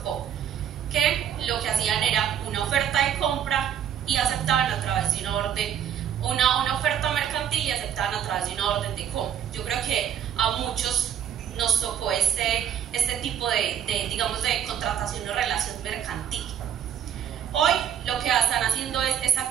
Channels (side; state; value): left; quieter; 9.2 dB